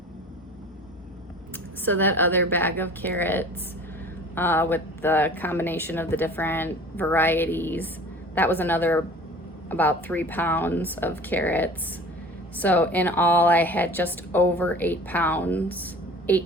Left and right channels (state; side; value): normal; both; correlation 0.43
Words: So that other bag of carrots with the combination of the different varieties, that was another about 3 pounds of carrots. So in all, I had just over 8 pounds